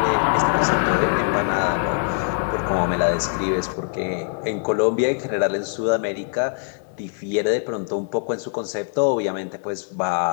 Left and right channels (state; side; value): silent; right; 64 dB below the other